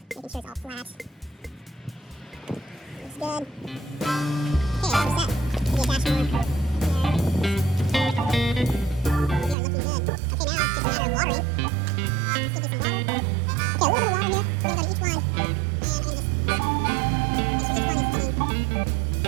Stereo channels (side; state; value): left; drops out; at 9.6 s